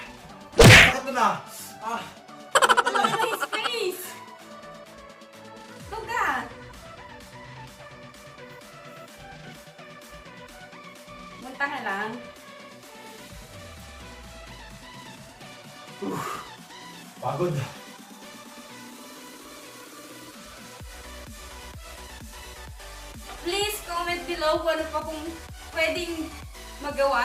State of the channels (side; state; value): both; identical; correlation 1.00